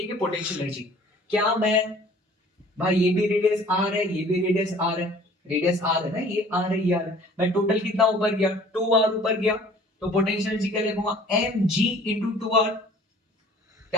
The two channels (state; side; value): normal; both; correlation 0.51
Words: पोटेंशियल एनर्जी। क्या मैं, भाई ये भी रेडियस आर है, ये भी रेडियस आर है, रेडियस आर है ना, ये आर है, ये आर है। मैं टोटल कितना ऊपर गया, 2r ऊपर गया। तो पोटेंशियल एनर्जी क्या लिखूंगा, एम जी इंटू 2r।